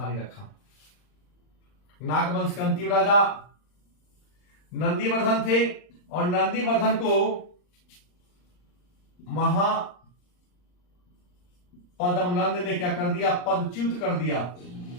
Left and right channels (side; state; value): right; late; 39 ms